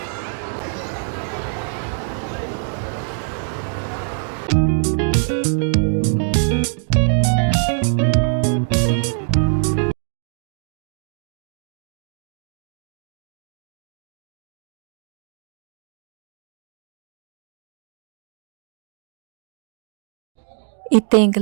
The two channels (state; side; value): silent; left; 63 dB below the other